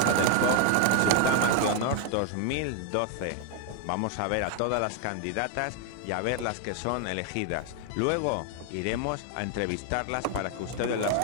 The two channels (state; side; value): different; both; correlation 0.01